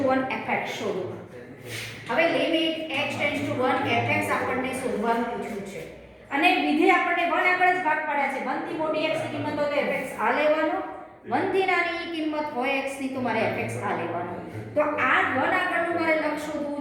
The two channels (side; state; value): both; identical; correlation 1.00